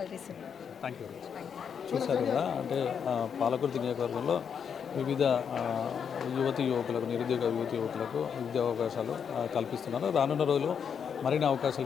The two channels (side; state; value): right; quieter; 7.2 dB